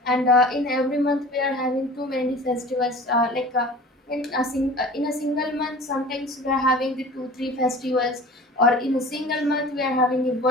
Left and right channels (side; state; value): both; normal; correlation 0.41